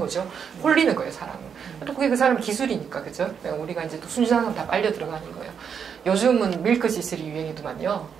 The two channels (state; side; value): quieter; left; 7.1 dB